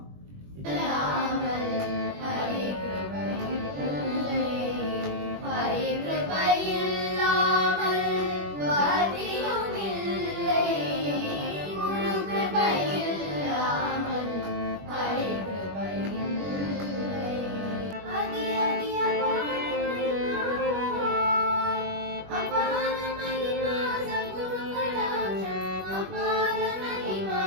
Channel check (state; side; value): late; left; 21 ms